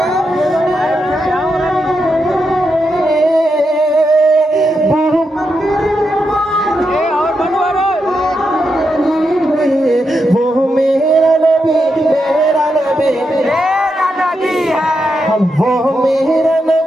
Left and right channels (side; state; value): both; normal; correlation 0.84